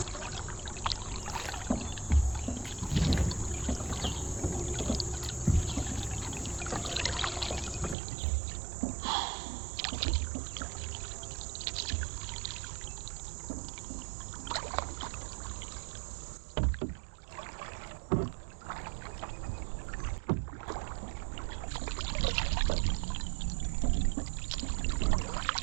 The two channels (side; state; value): left; drops out; at 8.0 s